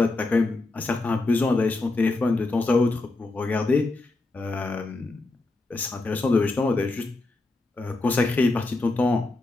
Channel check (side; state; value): right; quieter; 3.2 dB